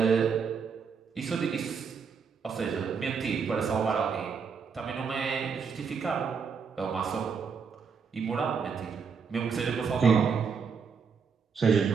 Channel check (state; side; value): quieter; left; 5.9 dB